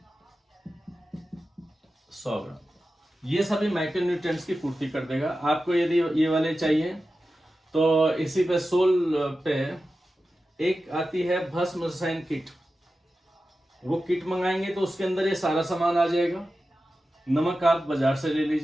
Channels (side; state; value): both; normal; correlation 0.93